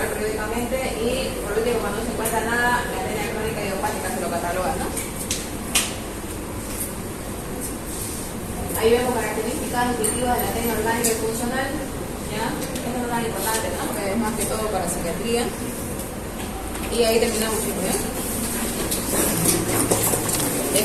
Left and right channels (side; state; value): both; identical; correlation 1.00